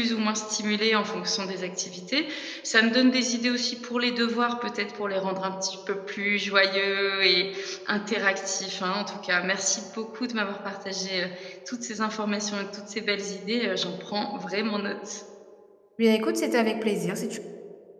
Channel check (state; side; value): identical; both; correlation 1.00